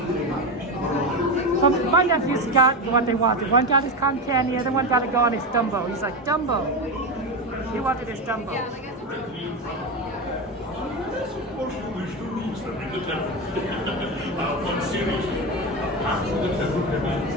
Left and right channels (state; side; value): normal; both; correlation 0.17